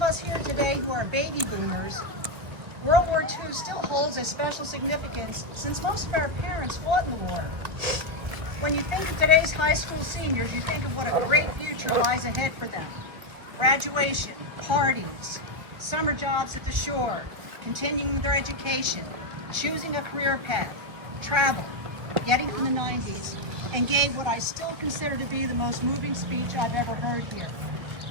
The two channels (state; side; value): late; left; 1.8 ms